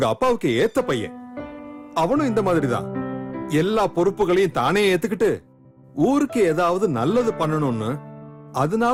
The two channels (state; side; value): identical; both; correlation 1.00